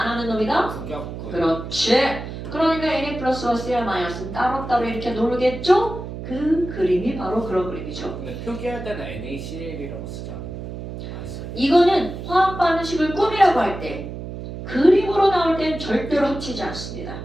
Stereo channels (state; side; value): noise; right; hum, 9 dB below the sound